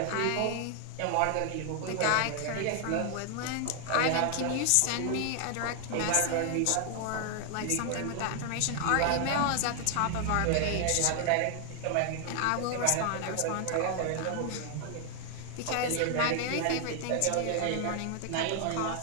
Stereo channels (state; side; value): different; both; correlation 0.00